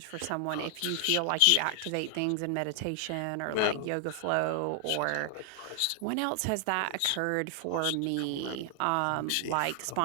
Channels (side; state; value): both; different; correlation 0.00